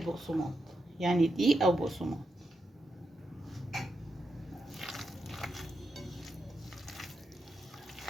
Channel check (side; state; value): both; normal; correlation 0.85